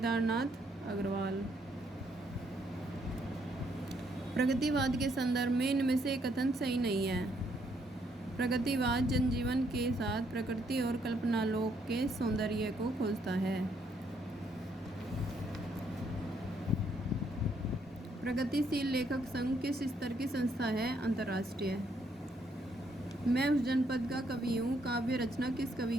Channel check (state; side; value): normal; both; correlation 0.72